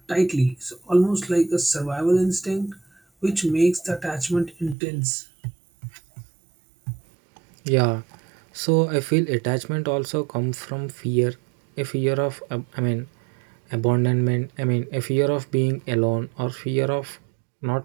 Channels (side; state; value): left; drops out; at 4.8 s